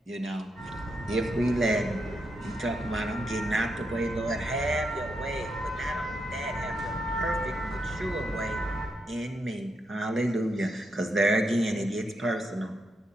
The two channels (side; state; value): both; normal; correlation 0.81